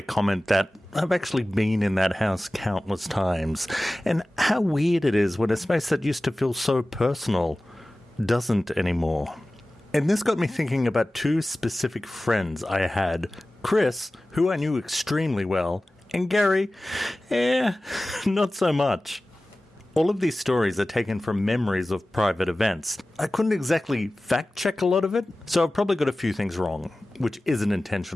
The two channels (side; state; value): both; normal; correlation 0.97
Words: comment that I've actually been in that house countless times, and how weird it is when a space that used to feel so personal doesn't anymore. And this got me thinking about two specific friends I had, Chris, who I knew extremely well, and Gary, not so much. All of these stories are taken from memories of private events. I couldn't exactly fact-check a lot of it, so I've probably got a few things wrong, which isn't